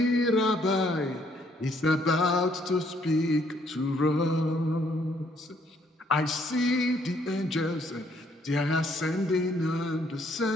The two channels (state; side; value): normal; both; correlation 0.67